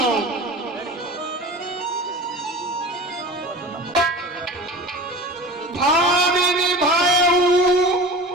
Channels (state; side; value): normal; both; correlation 0.35